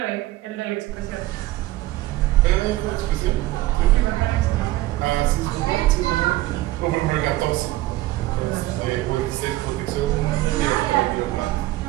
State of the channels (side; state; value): left; quieter; 17.0 dB